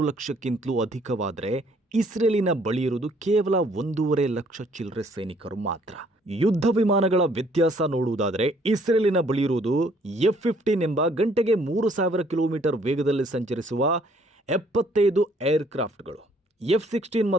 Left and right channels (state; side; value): normal; both; correlation 0.63